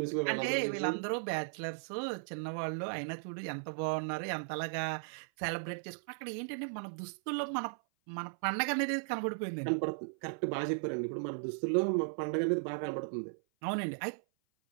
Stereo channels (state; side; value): silent; left; 54 dB below the other